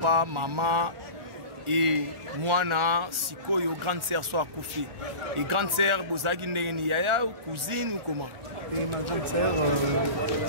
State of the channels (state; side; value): late; left; 1.4 ms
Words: maman et moi, Sikoyo, grande sœur, soit coupé. Et grande sœur, vous avez une yaya ou cousine ou comment? Et ma grande sœur